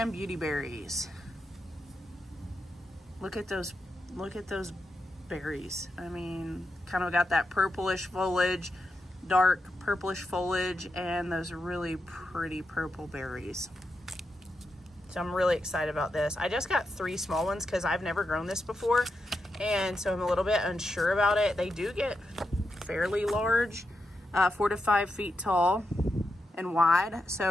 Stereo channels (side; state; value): both; normal; correlation 0.86